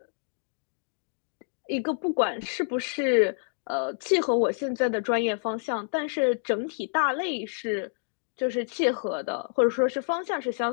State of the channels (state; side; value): silent; right; digital silence